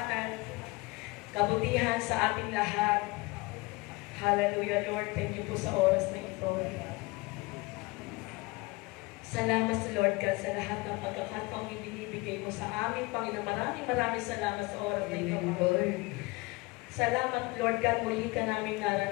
kabutihan sa ating lahat. Hallelujah, Lord. Thank you po sa oras na ito. Salamat sa Lord God sa lahat ng pagkakataong ibinibigay mo sa amin, Panginoon. Maraming salamat sa oras na ito, Lord. Salamat, Lord God, muli ka namin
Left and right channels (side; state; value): right; quieter; 24.1 dB